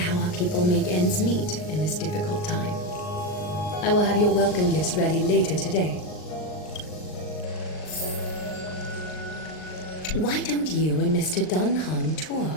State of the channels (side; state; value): right; late; 39 ms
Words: our people make ends meet in this difficult time. I will have your welcome gifts ready later today. Why don't you and Mr. Dunhung tour